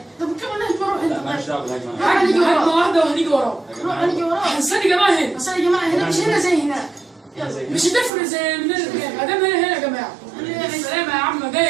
طب كم الهجمه روح لا انت. ماليش دعوه بالهجمه. هجمه واحده وهنيجي وراه. يا روح جماعه هنيجي وراه. استني يا جماعه هنا. بس يا جماعه هنا مش هنا زي هناك. زي مش هتفرق زي من ما دام هنا يا جماعه. السلام يا عم، ده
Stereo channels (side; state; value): left; drops out; at 8.1 s